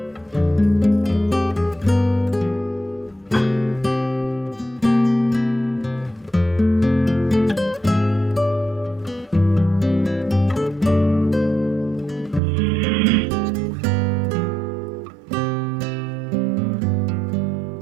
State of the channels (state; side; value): drops out; left; at 12.4 s